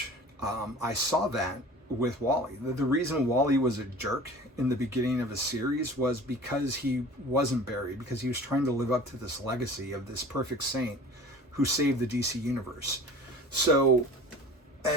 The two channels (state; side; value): normal; both; correlation 0.42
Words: I saw that with Wally. The reason Wally was a jerk in the beginning of a series was because he wasn't Barry, because he was trying to live up to this legacy of this perfect saint who saved the DC universe. So